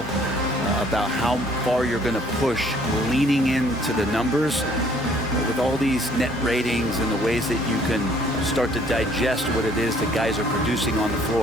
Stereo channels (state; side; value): normal; both; correlation 0.60